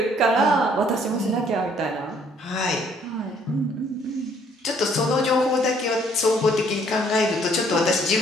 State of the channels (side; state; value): both; normal; correlation 0.63